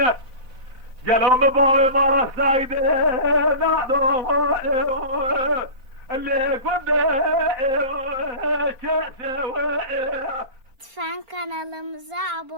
قالوا مباوي مرة سايدة نادو اللي كنت Lütfen kanalımıza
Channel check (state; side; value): late; left; 4.3 ms